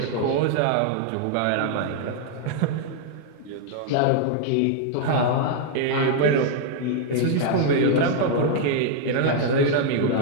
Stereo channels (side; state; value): both; different; correlation 0.00